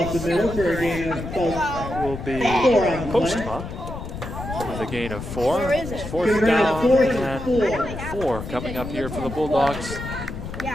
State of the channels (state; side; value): noise; left; rumble, 8 dB below the sound